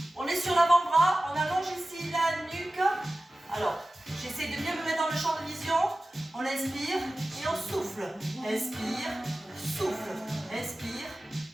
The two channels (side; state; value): both; normal; correlation 0.95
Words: On est sur l'avant-bras, on allonge ici la nuque. Alors, j'essaie de bien me mettre dans le champ de vision. On inspire et on souffle. Inspire, souffle. Inspire,